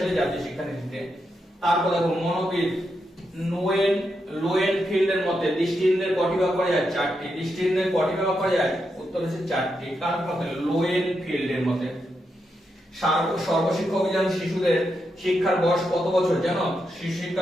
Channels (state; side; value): normal; both; correlation 0.84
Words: জাতীয় শিক্ষানীতিতে। তারপর দেখো মনোবিদ লোয়েনফিল্ডের মতে দৃষ্টিহীনদের কটি ভাগ করা যায়? 4টি। দৃষ্টিহীনদের কটি ভাগ করা যায়? উত্তর হচ্ছে 4টি। কার মতে? লোয়েনফিল্ডের মতে। সর্বশিক্ষা অভিযান শিশুদের শিক্ষার বয়স কত বছর জানো? শিশু